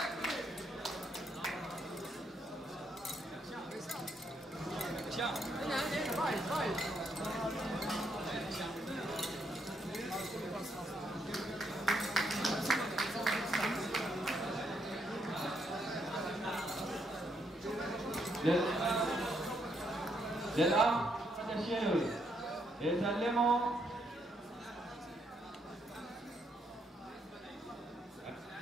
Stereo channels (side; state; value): both; normal; correlation 0.75